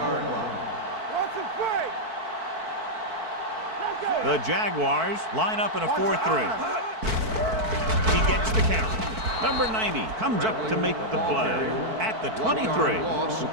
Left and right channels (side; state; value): left; late; 4.5 ms